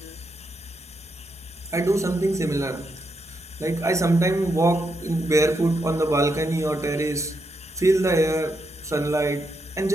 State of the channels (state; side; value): normal; both; correlation 0.81